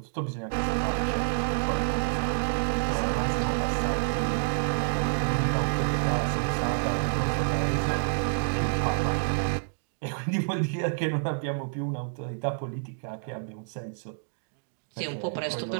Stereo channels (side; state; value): left; silent; digital silence